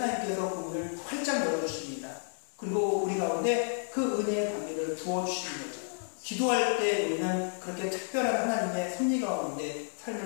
그 문을 활짝 열어주십니다. 그리고 우리 가운데 그 은혜의 단비를 부어주시는 거죠. 기도할 때 우리는 그렇게 특별한 하나님의 섭리 가운데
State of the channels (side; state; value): right; silent; digital silence